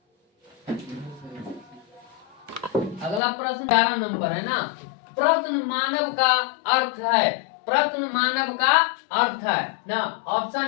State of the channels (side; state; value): right; drops out; at 3.2 s